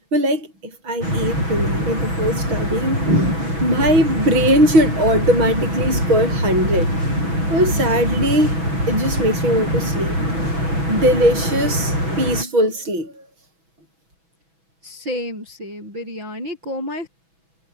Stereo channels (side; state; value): left; late; 6.1 ms